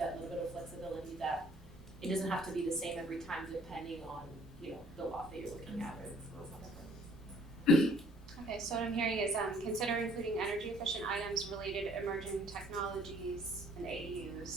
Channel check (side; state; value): both; normal; correlation 0.58